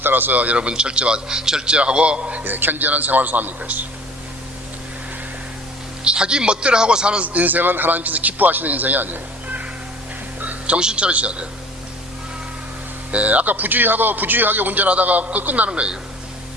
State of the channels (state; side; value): normal; both; correlation 0.47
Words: 따라서 여러분 절제하고 견제하는 생활을 삽니까? 자기 멋대로 하고 사는 인생은 하나님께서 기뻐하시는 인생이 아니에요. 정신 차리셔야 돼요. 아까 부주의하게 운전하다가 끝나는 거예요.